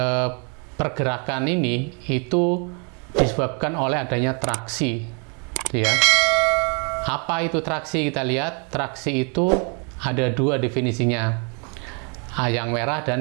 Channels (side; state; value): left; quieter; 37.0 dB